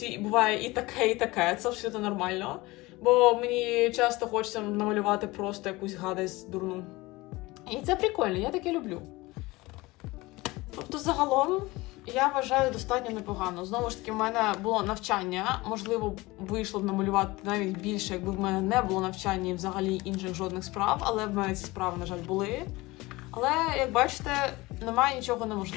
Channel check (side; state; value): right; quieter; 21.3 dB